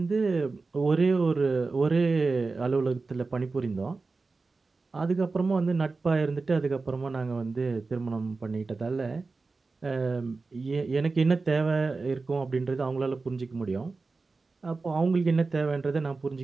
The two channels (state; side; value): quieter; left; 3.9 dB